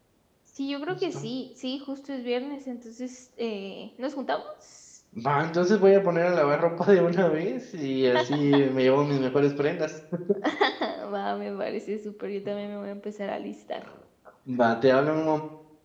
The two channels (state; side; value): identical; both; correlation 1.00